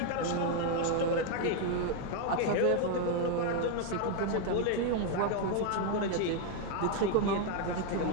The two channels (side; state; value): both; different; correlation 0.01